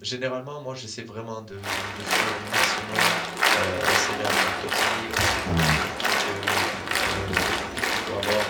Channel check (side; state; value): both; identical; correlation 1.00